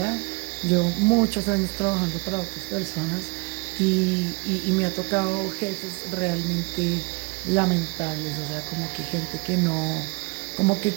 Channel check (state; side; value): quieter; left; 29.5 dB